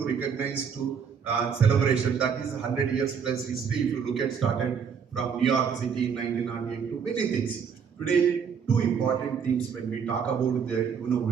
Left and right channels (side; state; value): left; quieter; 6.8 dB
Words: recognize to celebration. That is 100 years plus history. If you look at, started from New York City in 1998 to many things. Today, two important themes when we talk about the